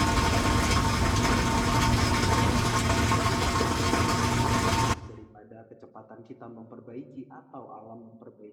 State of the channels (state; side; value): identical; both; correlation 1.00